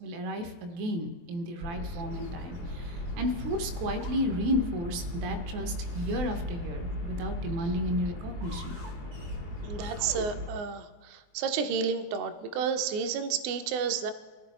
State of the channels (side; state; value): left; late; 23 ms